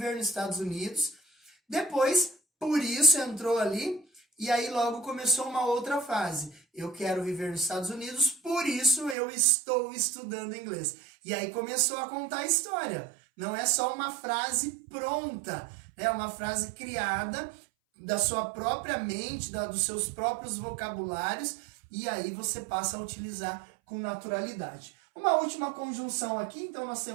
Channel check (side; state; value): left; drops out; at 9.2 s